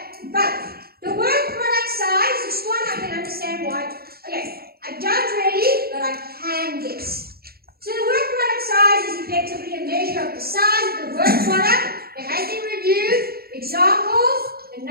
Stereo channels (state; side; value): late; left; 0.45 ms